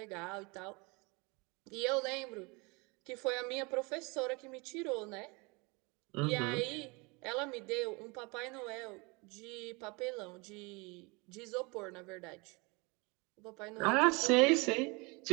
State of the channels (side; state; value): left; quieter; 28.2 dB